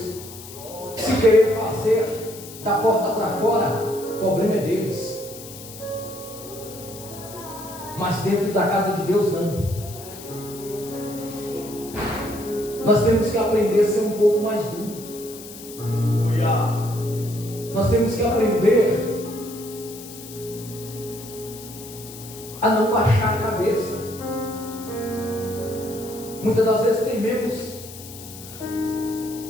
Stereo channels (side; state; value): left; noise; hiss, 15 dB below the sound